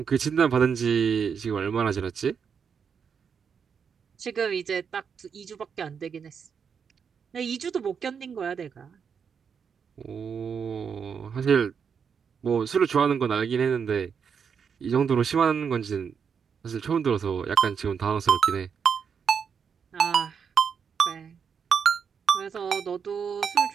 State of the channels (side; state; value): left; quieter; 6.7 dB